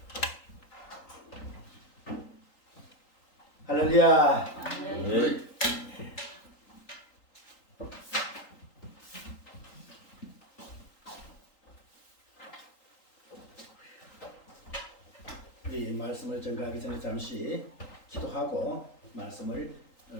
할렐루야. 네. 우리 말씀을 전가하기 전에 잠시 기도하고 말씀을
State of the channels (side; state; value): right; late; 3.8 ms